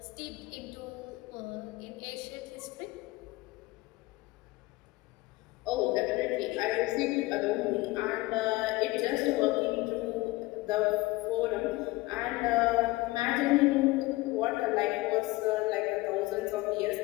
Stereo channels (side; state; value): right; quieter; 20.6 dB